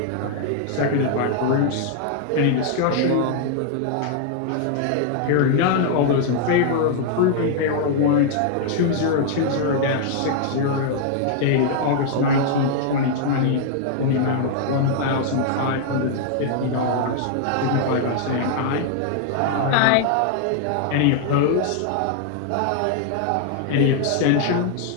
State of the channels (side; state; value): both; different; correlation 0.00